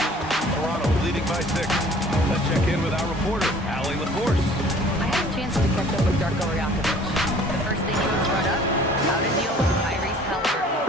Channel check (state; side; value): normal; both; correlation 0.52